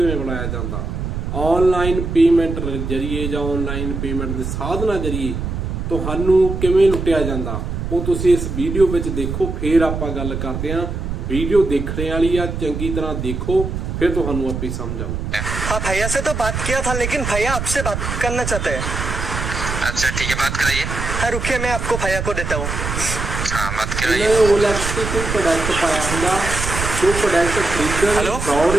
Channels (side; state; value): right; noise; rumble, 4 dB below the sound